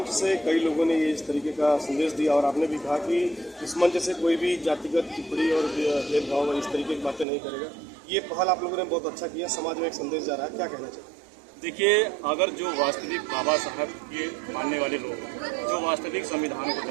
से कई लोगों ने इस तरीके का संदेश दिया और आपने भी कहा कि इस मंच से कोई भी जातिगत टिप्पणी और भेदभाव इस तरीके की बातें नहीं करेगा। ये पहल आप लोगों ने बहुत अच्छा किया, समाज में एक संदेश जा रहा है, क्या कहना चाहिए? देखिए, अगर जो वास्तविक बाबा साहब के मानने वाले लोग जो वास्तविक संविधान को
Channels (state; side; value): drops out; left; at 7.2 s